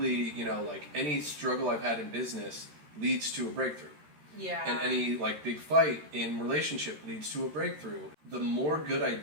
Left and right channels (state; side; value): late; left; 13 ms